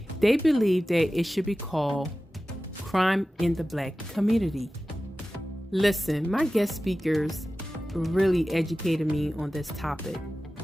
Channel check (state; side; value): normal; both; correlation 0.95